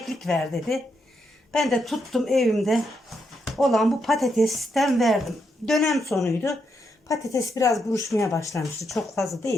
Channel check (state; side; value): normal; both; correlation 0.81